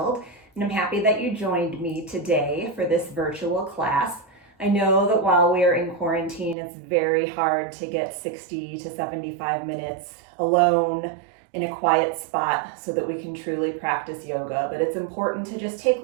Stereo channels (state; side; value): drops out; left; at 6.6 s